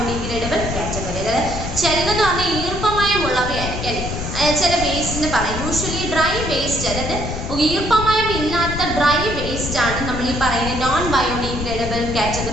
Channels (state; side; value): noise; left; rumble, 5 dB below the sound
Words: category. അതായത് ചിലതെന്ന് പറഞ്ഞാൽ ഈർപ്പമയമുള്ളവയായിരിക്കും അല്ലേ ചില വേസ്റ്റിന് പറയാം. യൂഷ്വലി ഡ്രൈ വേസ്റ്റ് അതായത് ഈർപ്പമയം ഇല്ലാത്ത ഡ്രൈ വേസ്റ്റ് ആണ് നമ്മൾ ഈ പറയുന്ന നോൺ ബയോഡിഗ്രേഡബിൾ